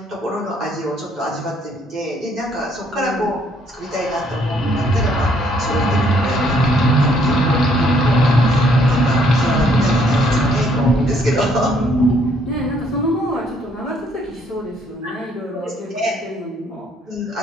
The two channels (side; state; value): both; normal; correlation 0.66